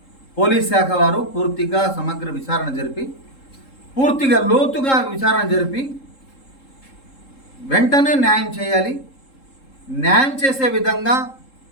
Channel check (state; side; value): late; right; 3.7 ms